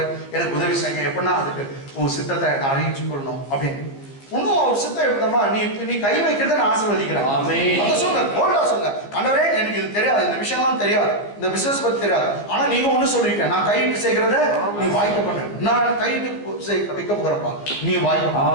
எனக்கு உதவி செய்யுங்க, எப்படின்னா அதுக்கு உன் சித்தத்தை நான் அரேஞ்ச் பண்ணணும் அப்படின்னு. இன்னும் ஒரு சித்தம் எப்படின்னா நீ கை வைக்கிறத நான் ஆசீர்வதிக்கிறேன். அதை சொல்லுங்க, போல்டா சொல்லுங்க. ஆண்டவரே எனக்கு இது தெரியாது, இந்த விஷயம்லாம் தெரியாது, இந்த பிசினஸ் பத்தி தெரியாது. ஆனா நீங்க ஒண்ணு சொல்லிருக்க, நான் கையிட்டு செய்கிறத நீ வாய்க்க பண்ண, நான் கையிட்டு வைக்க போகிறப்பா நீ வாய்க்க.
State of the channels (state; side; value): late; right; 15 ms